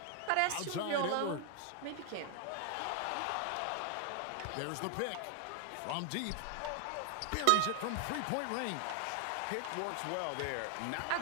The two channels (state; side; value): different; both; correlation 0.00